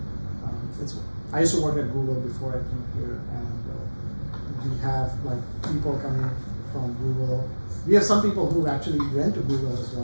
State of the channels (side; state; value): both; inverted; correlation -1.00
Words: I used to work at Google before I came here, and we have like people coming from Google. We have some people who actually went to Google as